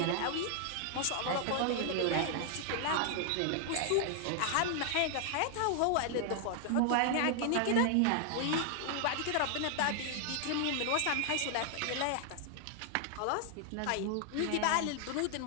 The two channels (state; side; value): different; both; correlation 0.00